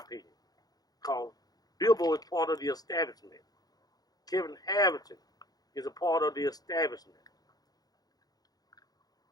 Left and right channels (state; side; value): late; right; 0.19 ms